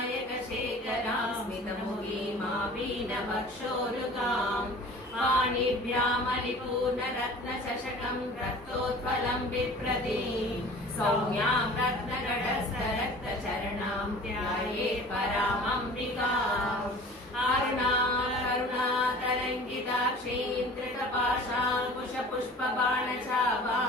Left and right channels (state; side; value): normal; both; correlation 0.44